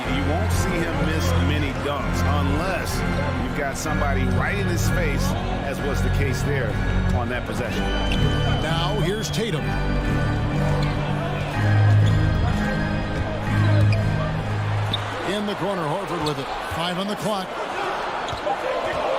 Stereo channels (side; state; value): both; identical; correlation 1.00